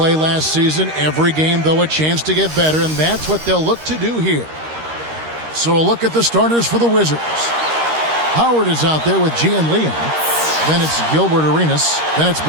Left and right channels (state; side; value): late; left; 13 ms